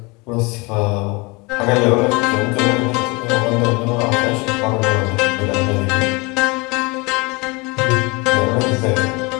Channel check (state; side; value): quieter; right; 26.7 dB